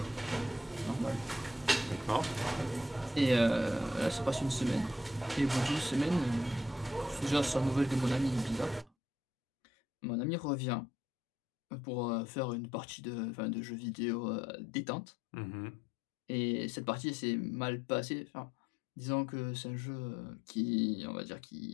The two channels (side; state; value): right; drops out; at 8.9 s